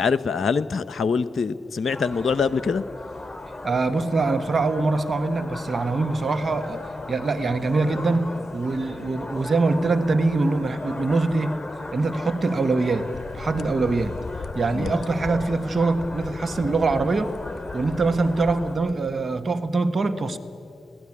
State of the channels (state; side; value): normal; both; correlation 0.88